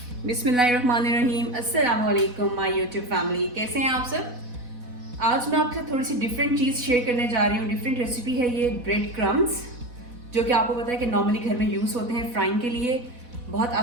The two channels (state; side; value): late; left; 4.1 ms